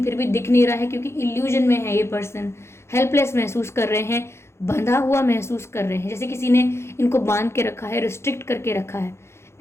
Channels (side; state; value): right; late; 0.13 ms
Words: फिर भी दिख नहीं रहा है क्योंकि इल्यूजन में है ये पर्सन। हेल्पलेस महसूस कर रहे हैं, बंधा हुआ महसूस कर रहे हैं, जैसे किसी ने इनको बांध के रखा है, रिस्ट्रिक्ट करके रखा है।